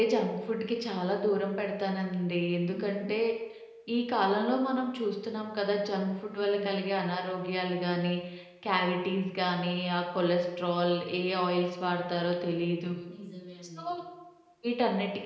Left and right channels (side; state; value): both; identical; correlation 1.00